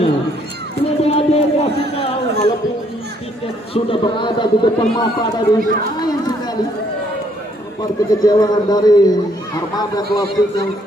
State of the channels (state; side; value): normal; both; correlation 0.68